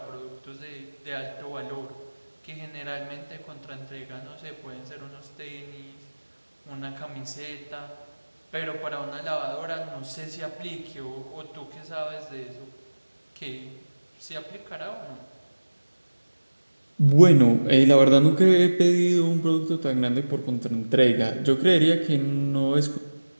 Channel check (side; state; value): both; inverted; correlation -1.00